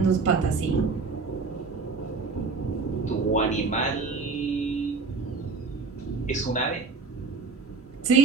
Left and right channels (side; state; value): left; quieter; 4.4 dB